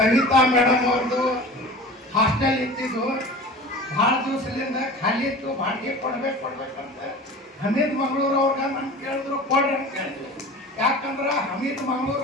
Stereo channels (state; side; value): normal; both; correlation 0.37